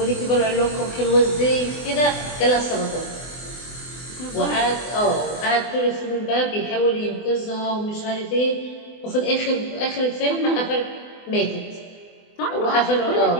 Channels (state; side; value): late; right; 24 ms